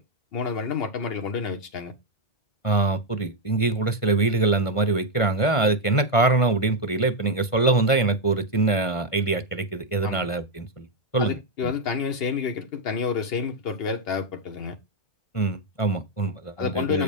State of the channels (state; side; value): late; right; 1.5 ms